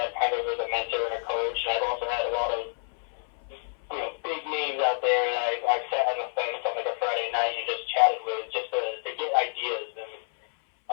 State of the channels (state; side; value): silent; right; 59 dB below the other